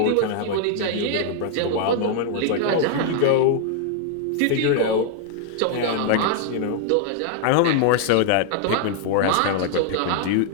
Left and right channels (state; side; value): different; both; correlation 0.00